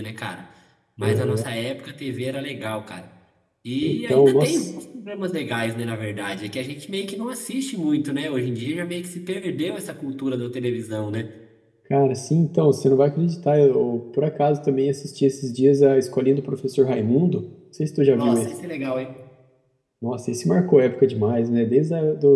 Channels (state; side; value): identical; both; correlation 1.00